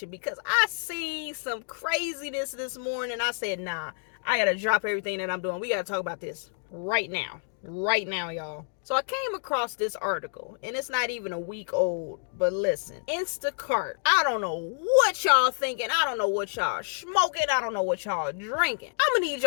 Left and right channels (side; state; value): right; silent; digital silence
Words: because I seen some craziness this morning. I said, nah, I gotta drop everything that I'm doing. We gotta talk about this right now, y'all. So I came across this article, and it's not even a week old, but listen, Instacart, I don't know what y'all thinking, I don't know what y'all smoking, I don't know what y'all drinking. I'm gonna need